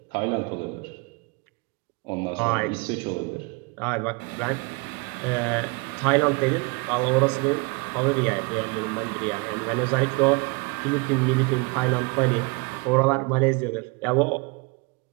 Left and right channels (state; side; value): quieter; left; 28.8 dB